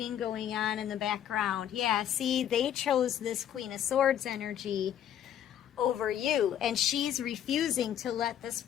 going on in the background. Yeah, see, they chose this Queen of Swords energy over you, and she's refusing to let this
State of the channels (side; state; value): right; quieter; 10.3 dB